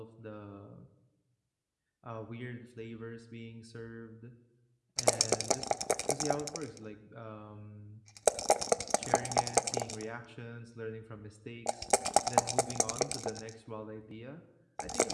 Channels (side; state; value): both; identical; correlation 1.00